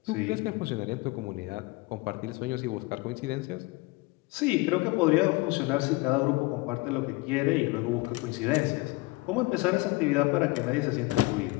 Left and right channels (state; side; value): quieter; right; 22.6 dB